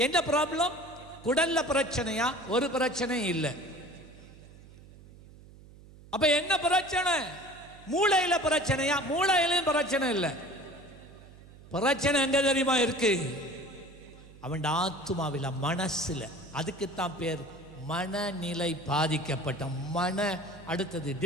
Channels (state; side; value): noise; right; hum, 21 dB below the sound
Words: என்ன ப்ராப்ளம்? குடல்ல பிரச்சனையா? ஒரு பிரச்சனை இல்லை. அப்ப என்ன பிரச்சனை? மூளையில பிரச்சனையா? மூளையிலும் பிரச்சனை இல்லை. பிரச்சனை எங்க தெரியுமா இருக்கு? அவன் ஆத்துமாவில, மனசுல. அதுக்குத்தான் பேர் மனநிலை பாதிக்கப்பட்ட மன. அடுத்தது